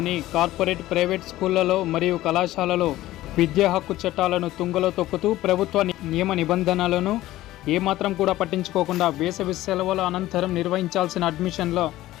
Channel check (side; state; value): right; quieter; 15.7 dB